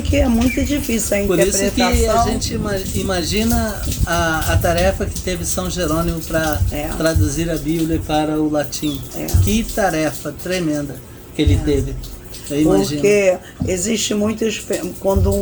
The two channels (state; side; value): identical; both; correlation 1.00